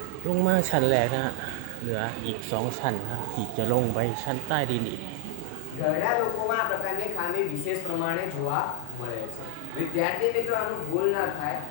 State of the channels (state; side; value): different; both; correlation 0.00